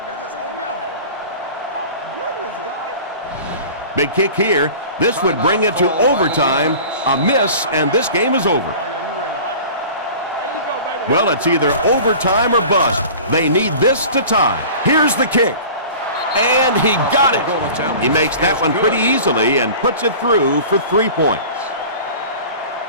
Big kick here. This would bring it to overtime. A miss, and this game is over. Well, it's either overtime or bust. They need this to tie. Here's the kick. And he got it. He makes that one pretty easily and puts it through for 3 points.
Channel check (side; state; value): both; inverted; correlation -0.40